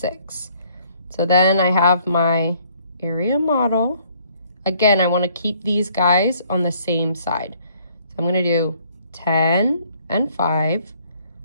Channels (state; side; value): inverted; both; correlation -0.63